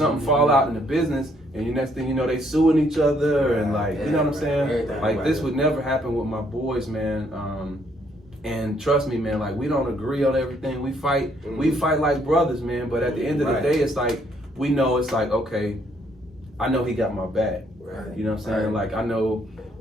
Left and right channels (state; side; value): normal; both; correlation 0.69